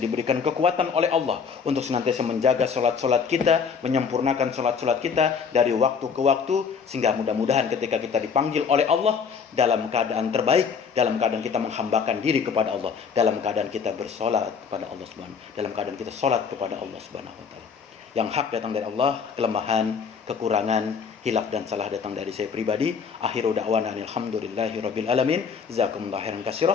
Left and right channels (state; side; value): quieter; right; 6.2 dB